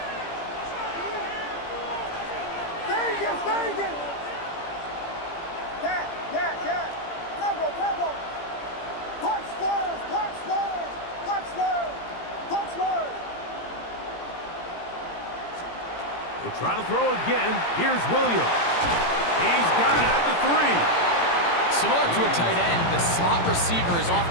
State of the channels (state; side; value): late; right; 17 ms